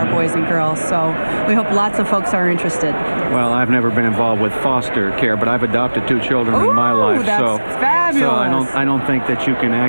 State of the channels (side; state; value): both; inverted; correlation -1.00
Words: boys and girls. So we hope lots of folks are interested. Well, I've never been involved with foster care, but I've adopted 2 children in my life. That's fabulous. So I don't think that you can